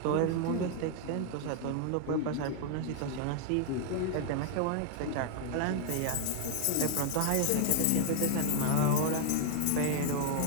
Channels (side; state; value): both; different; correlation 0.00